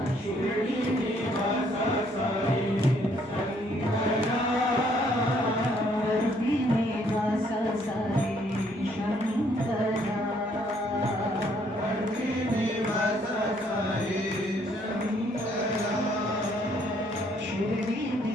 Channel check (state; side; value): normal; both; correlation 0.66